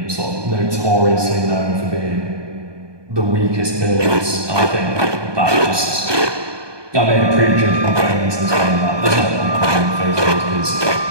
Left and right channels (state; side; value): late; left; 1.2 ms